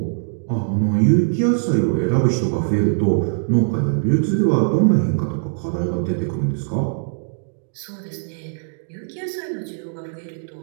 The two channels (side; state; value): left; silent; digital silence